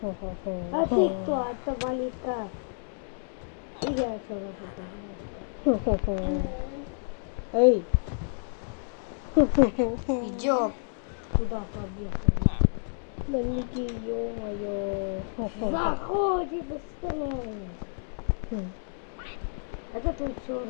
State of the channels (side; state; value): right; silent; 58 dB below the other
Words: ты кто? Это Малика. Иди отсюда. Эй. Идем. Туда побег. Да не ё-моё. Заходи быстрее. Это твой